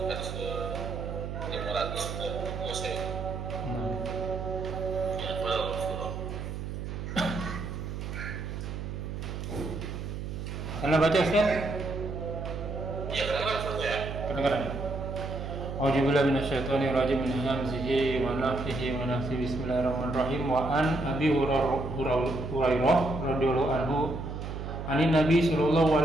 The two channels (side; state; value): right; noise; hum, 6 dB below the sound